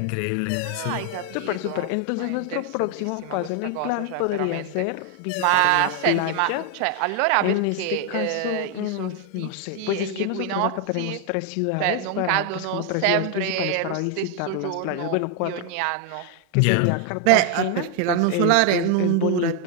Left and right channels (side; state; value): both; different; correlation 0.01